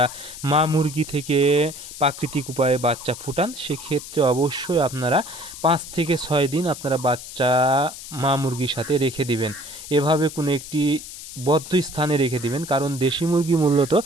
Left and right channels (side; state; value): left; noise; hiss, 12 dB below the sound